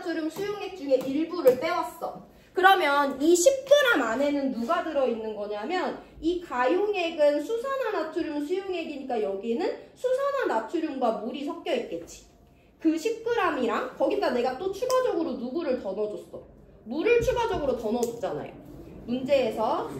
수용액 중에 일부를 떼왔어. 그러면 이 10g 안에는 누가 들어있는 거냐면 이 가용액은 수산화나트륨 수용액이니까 여기는 수산화나트륨과 물이 섞여 있겠지. 그 10g이랑 거기다 내가 또 추가적으로 누구를 더 넣어줬어. 물을 추가적으로 더 넣어줬잖아요. 문제에서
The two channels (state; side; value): identical; both; correlation 1.00